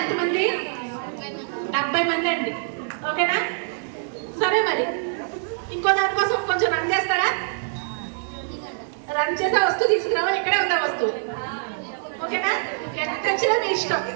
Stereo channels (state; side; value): silent; left; digital silence